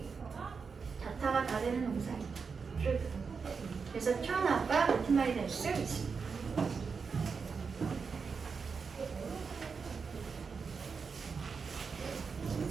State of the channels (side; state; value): left; quieter; 5.4 dB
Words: 자타가 다 되는 동사입니다. 그래서 turn out과 같은 말이 될 수 있습니다.